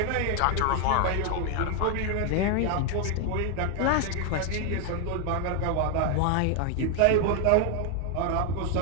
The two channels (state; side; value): different; both; correlation 0.01